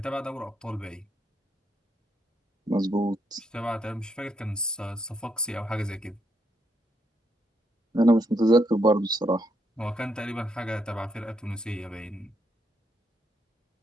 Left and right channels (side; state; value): both; normal; correlation 0.77